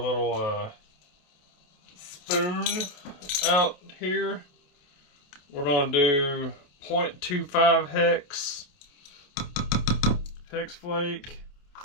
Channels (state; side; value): late; right; 28 ms